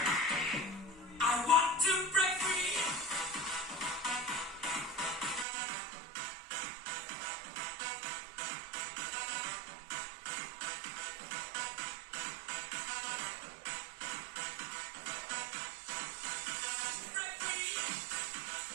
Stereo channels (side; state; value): left; drops out; at 5.5 s